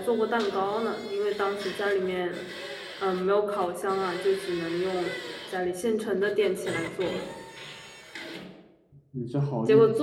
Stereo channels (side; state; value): both; identical; correlation 1.00